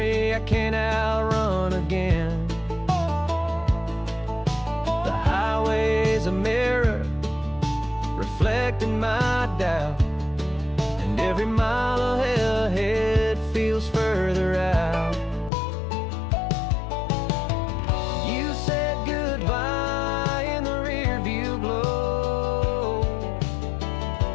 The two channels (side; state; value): right; drops out; at 15.5 s